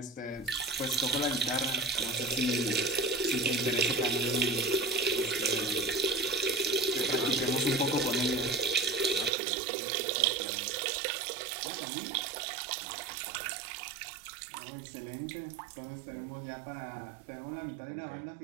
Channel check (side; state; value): left; drops out; at 9.3 s